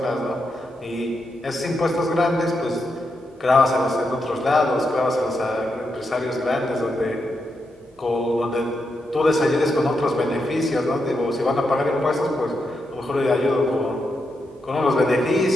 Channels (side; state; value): both; normal; correlation 0.84